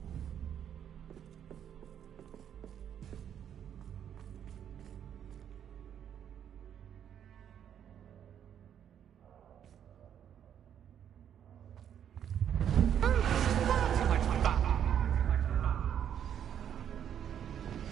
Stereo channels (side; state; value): left; quieter; 9.2 dB